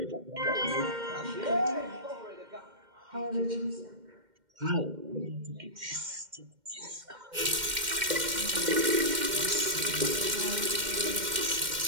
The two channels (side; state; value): left; late; 2.1 ms